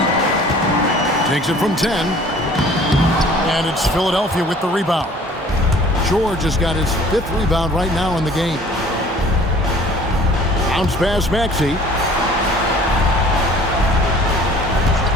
Takes it from 10. And it's Philadelphia with the rebound. George has got his 5th rebound right now in the game. Bounce pass Maxey.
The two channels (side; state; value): both; normal; correlation 0.51